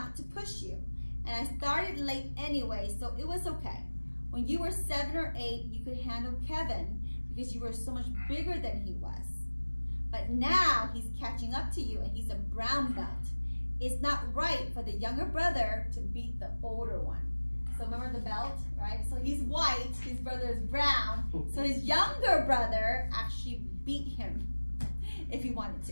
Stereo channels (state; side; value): inverted; both; correlation -1.00